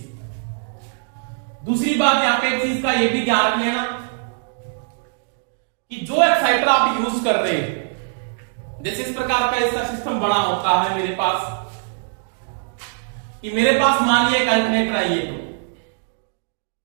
दूसरी बात यहां पे एक चीज का यह भी ध्यान रख लेना कि जो एक्साइटर आप यूज कर रहे हैं, जैसे इस प्रकार का इसका सिस्टम बना होता है मेरे पास, कि मेरे पास मान लिया एक अल्टरनेटर है, ये तो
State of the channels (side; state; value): left; silent; digital silence